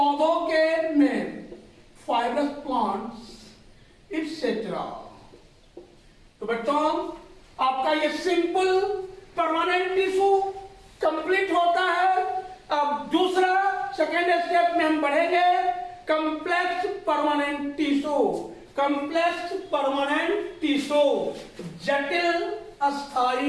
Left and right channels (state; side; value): identical; both; correlation 1.00